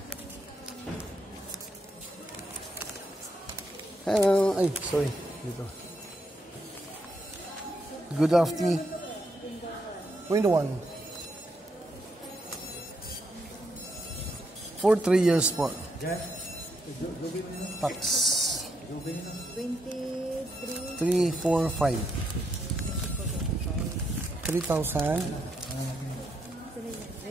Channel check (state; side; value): normal; both; correlation 0.78